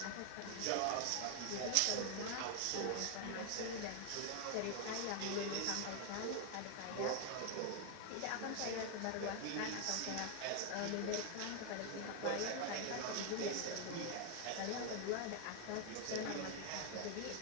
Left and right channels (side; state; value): both; different; correlation 0.01